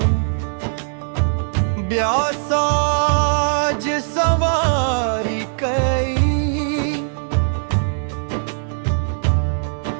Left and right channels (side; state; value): left; silent; 66 dB below the other